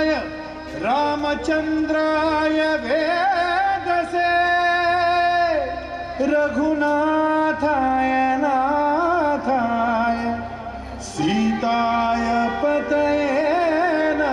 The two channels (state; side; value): identical; both; correlation 1.00